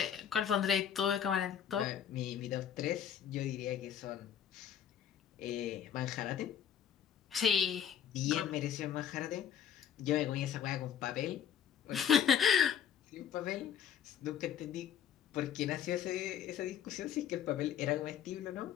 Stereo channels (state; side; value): quieter; right; 8.9 dB